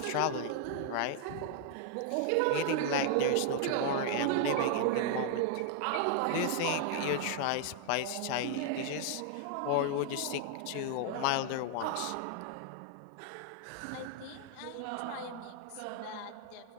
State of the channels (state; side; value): different; both; correlation 0.00